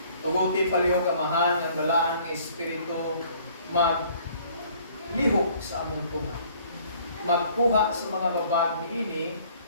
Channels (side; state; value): both; inverted; correlation -0.57